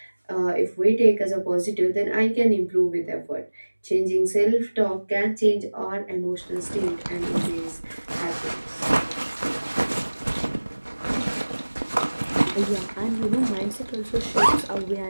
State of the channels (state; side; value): inverted; both; correlation -1.00